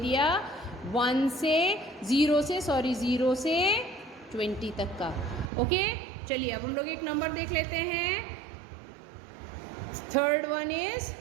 0 से 20 तक का। ओके चलिए, अब हम लोग एक नंबर देख लेते हैं। थर्ड वन इज,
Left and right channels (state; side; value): drops out; left; at 5.5 s